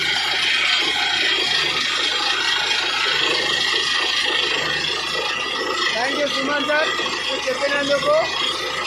Thank you Suman sir. మీరు చెప్పినందుకు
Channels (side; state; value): both; identical; correlation 1.00